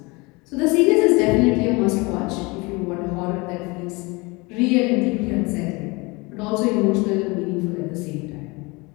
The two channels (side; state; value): right; quieter; 25.8 dB